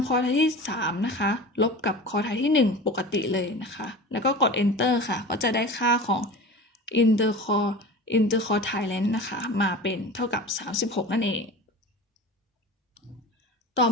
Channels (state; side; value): normal; both; correlation 0.34